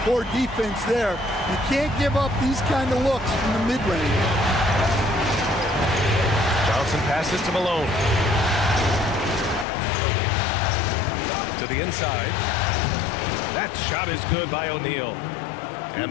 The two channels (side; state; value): right; drops out; at 9.7 s